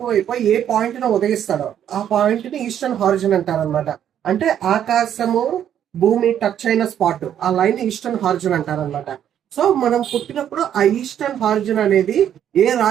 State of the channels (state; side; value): quieter; left; 9.9 dB